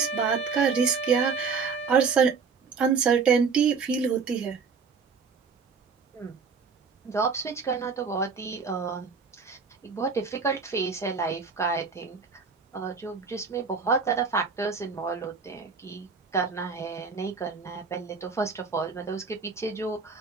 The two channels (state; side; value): quieter; left; 5.3 dB